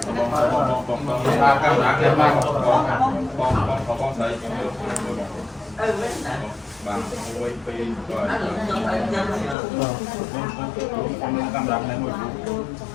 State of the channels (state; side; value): drops out; right; at 9.6 s